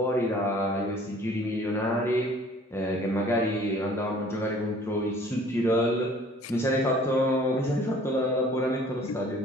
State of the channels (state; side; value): normal; both; correlation 0.53